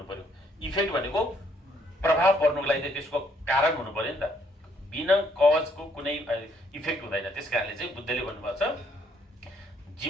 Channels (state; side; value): normal; both; correlation 0.68